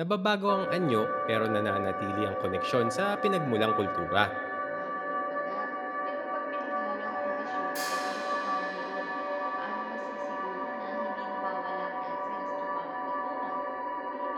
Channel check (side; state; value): both; identical; correlation 1.00